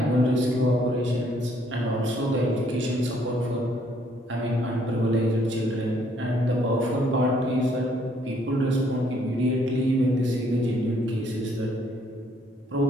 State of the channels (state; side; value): normal; both; correlation 0.66